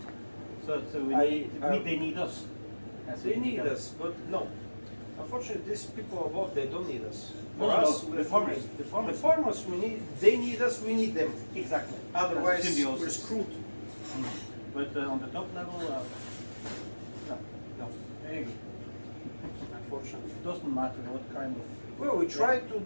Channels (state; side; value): inverted; both; correlation -1.00